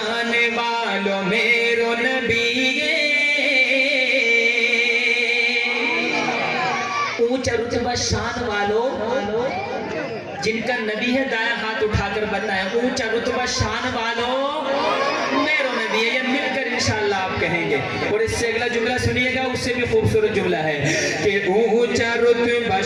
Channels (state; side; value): identical; both; correlation 1.00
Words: والو میرو نبی ہے، اونچا رتبہ شان والو جن کا نبی ہے، دائیں ہاتھ اٹھا کر بتائیں اونچا رتبہ شان والو میرو نبی ہے۔ یہ مل کر انشاءاللہ آپ کہیں گے، اور اس سے اگلا جملہ سنیے گا، اس سے بھی خوبصورت جملہ ہے کہ اونچا رتبہ